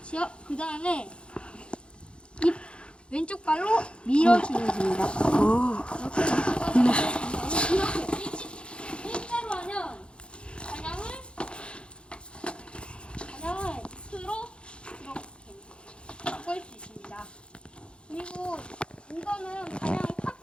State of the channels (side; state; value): right; late; 0.056 ms